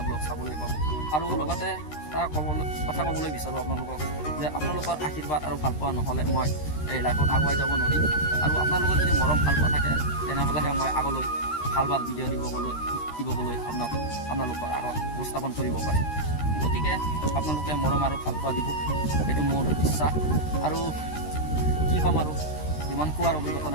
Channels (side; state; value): right; late; 13 ms